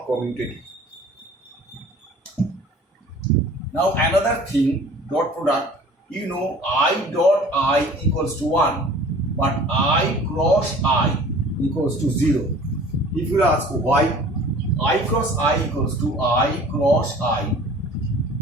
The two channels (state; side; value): normal; both; correlation 0.47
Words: commutative. Now another thing, dot product, you know I dot I equals to 1, but I cross I equals to 0. If you ask why, I cross I equals to I cross I